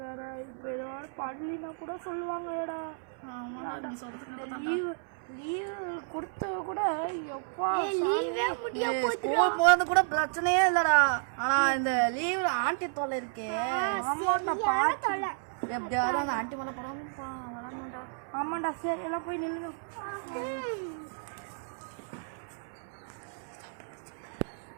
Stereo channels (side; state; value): left; silent; 56 dB below the other